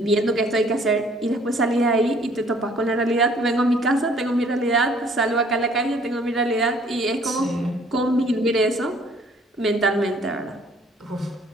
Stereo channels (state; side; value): normal; both; correlation 0.58